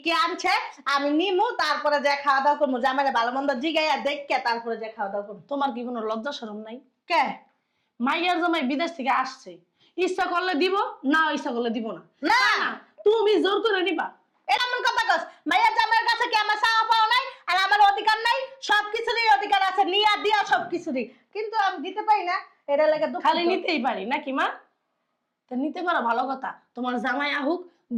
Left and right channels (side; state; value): both; identical; correlation 1.00